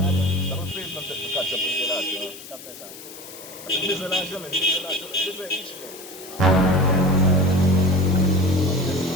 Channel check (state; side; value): noise; left; hiss, 15 dB below the sound